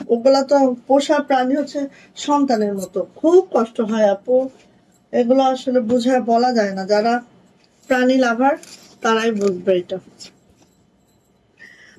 ওগুলা তো পোষা প্রাণী হচ্ছে সন্তানের মতো। খুব কষ্ট হয় আপু, এগুলো আসলে বুঝায় বলা যায় না। যারা প্রাণী লাভার তারাই বুঝবে এটা।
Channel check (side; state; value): both; identical; correlation 1.00